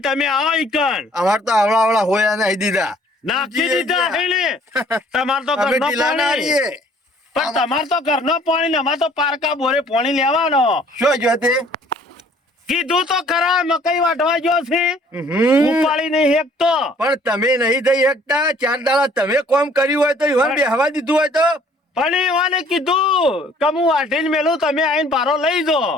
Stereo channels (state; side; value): normal; both; correlation 0.57